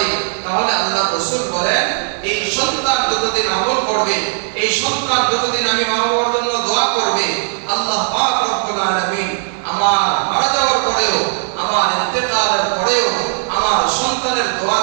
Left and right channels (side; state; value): left; silent; digital silence